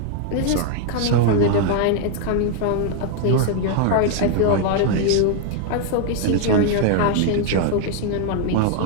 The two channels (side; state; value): both; different; correlation 0.00